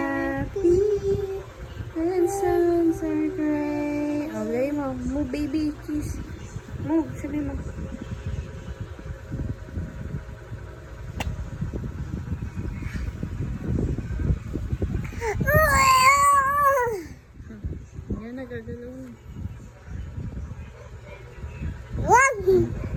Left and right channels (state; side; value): identical; both; correlation 1.00